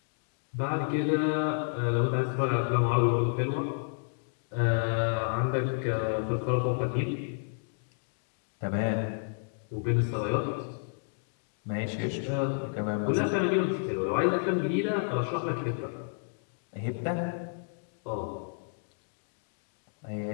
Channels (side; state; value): right; silent; digital silence